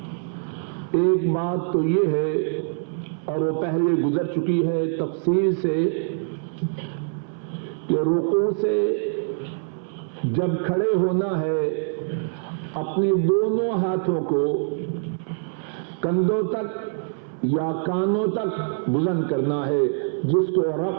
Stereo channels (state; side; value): silent; left; 62 dB below the other